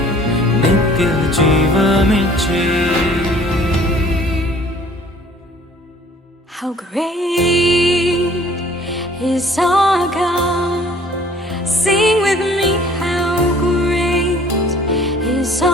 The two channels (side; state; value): both; normal; correlation 0.54